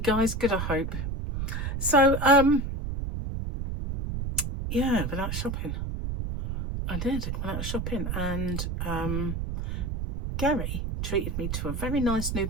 Good, I hope. So, yeah, went out shopping. I did. Went out shopping, and Gary treated me to a very nice new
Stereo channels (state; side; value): noise; right; rumble, 3 dB below the sound